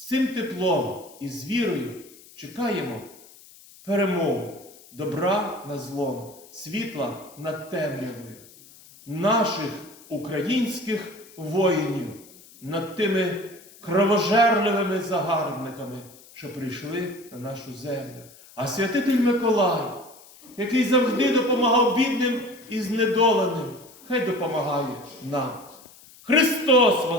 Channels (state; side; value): noise; left; hiss, 23 dB below the sound